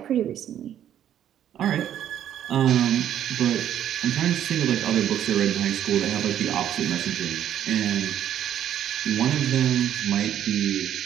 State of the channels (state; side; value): quieter; left; 10.6 dB